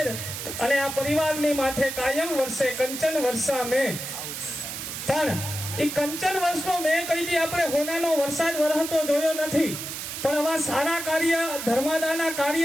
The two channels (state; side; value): noise; right; hiss, 7 dB below the sound